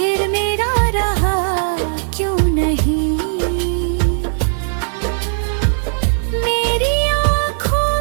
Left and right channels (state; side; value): silent; left; digital silence